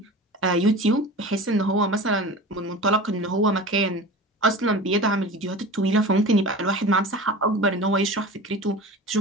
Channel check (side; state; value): both; normal; correlation 0.35